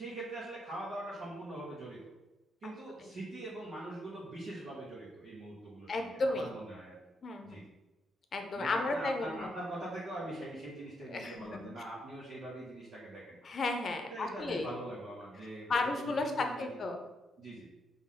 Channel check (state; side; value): normal; both; correlation 0.79